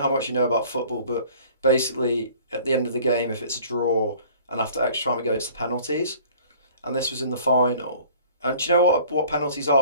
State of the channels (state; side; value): inverted; both; correlation -0.51